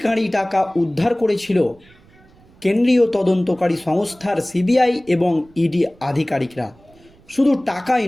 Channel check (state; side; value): noise; right; rumble, 28 dB below the sound